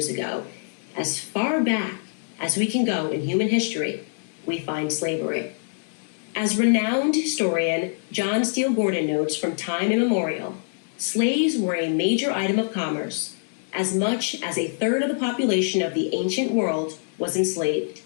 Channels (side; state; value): right; silent; digital silence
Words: ago. As far back as we can go in human history, we find slavery. As renowned historian John Steele Gordon notes from time immemorial, slaves were a major item of commerce. As much as a third of the population of the ancient world was enslaved.